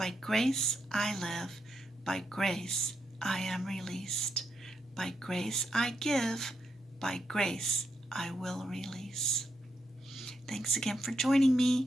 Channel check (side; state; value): both; normal; correlation 0.82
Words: grace I live, by grace I am released. By grace I give, by grace I will release. Thanks again for joining